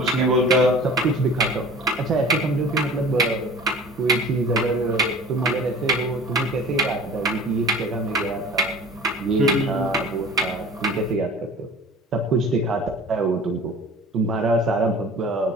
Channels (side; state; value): both; normal; correlation 0.43